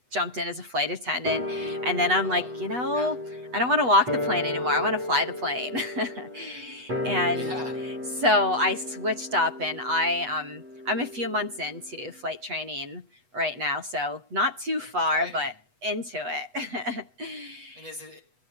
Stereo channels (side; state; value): left; late; 8.1 ms